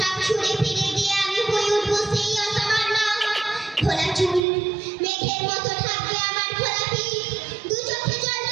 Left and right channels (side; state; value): left; drops out; at 4.4 s